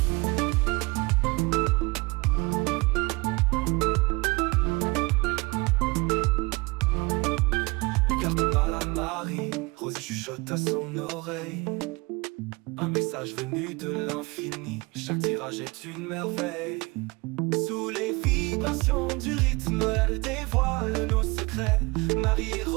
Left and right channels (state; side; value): quieter; left; 25.7 dB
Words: Les cartes parlent à Marie, Rosie chuchote à son oreille. Un message venu de l'infini, chaque tirage est une merveille. Sous les vibrations du rythme, elle dévoile nos secrets. Marie et